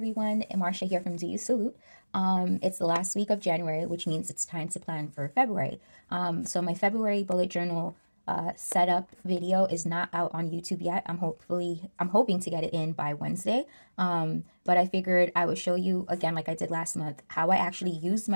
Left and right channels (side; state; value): both; inverted; correlation -1.00